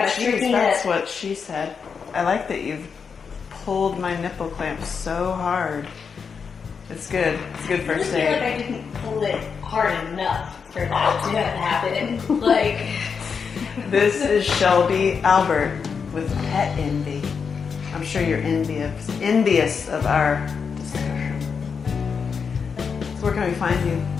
jeez, that's what she said. I like that you've pulled my nipple clamp so hard. It's good. It's good first I feel like aid. I didn't pull it hard enough for that to have happened. Like, This is Shelbi Albert with Pet Envy. I'm sure you're envious of our discussion. So where can we find you?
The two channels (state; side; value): quieter; right; 6.0 dB